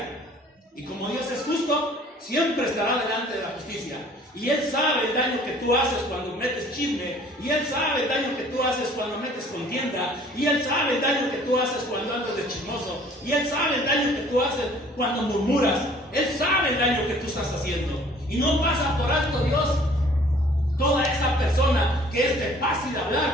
Y como Dios es justo, siempre estará delante de la justicia. Y Él sabe el daño que tú haces cuando metes chisme. Y Él sabe el daño que tú haces cuando metes contienda. Y Él sabe el daño que tú haces cuando andas de chismoso. Y Él sabe el daño que tú haces cuando murmuras. Él sabe el daño que tú estás haciendo. Y no pasa por alto Dios toda esa persona que es de fácil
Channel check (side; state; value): both; normal; correlation 0.54